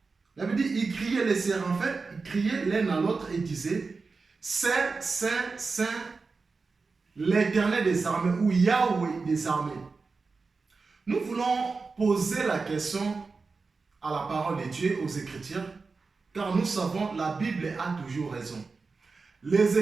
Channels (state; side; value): quieter; left; 4.3 dB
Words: la Bible dit, ils criaient les séraphins, ils criaient l'un à l'autre et disaient, Saint, Saint, Saint, l'Éternel des armées, ou Yahweh des armées. Nous voulons poser la question à la parole de Dieu, aux Écritures, car nous savons la Bible a toujours raison. Les